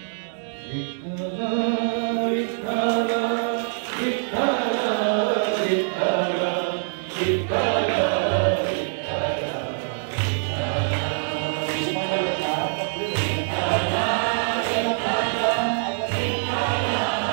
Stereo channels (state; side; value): silent; left; 62 dB below the other